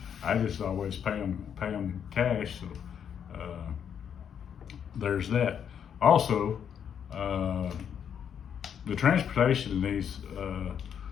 I just always pay them cash. So there's that. Also, the transportation in these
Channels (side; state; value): right; quieter; 8.2 dB